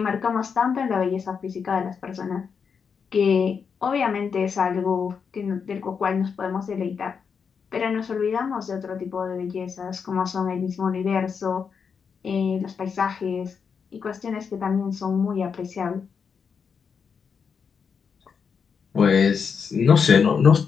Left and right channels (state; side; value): quieter; right; 6.2 dB